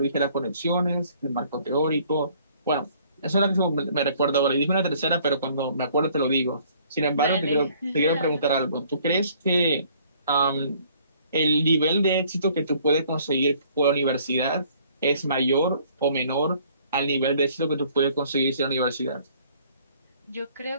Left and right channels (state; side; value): inverted; both; correlation -0.59